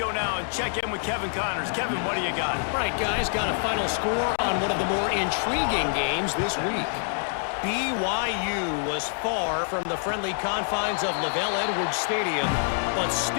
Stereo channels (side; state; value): right; silent; digital silence